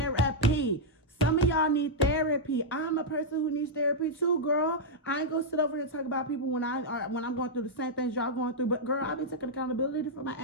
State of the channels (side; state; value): both; normal; correlation -0.05